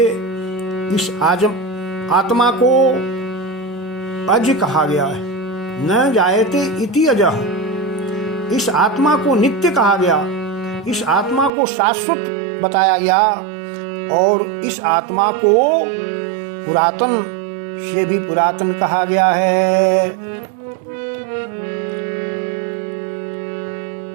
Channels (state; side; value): drops out; left; at 11.5 s